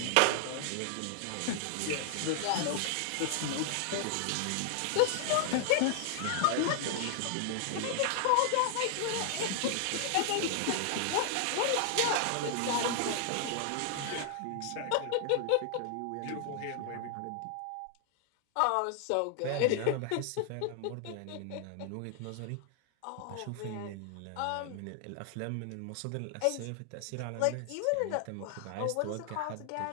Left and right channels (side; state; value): both; different; correlation 0.00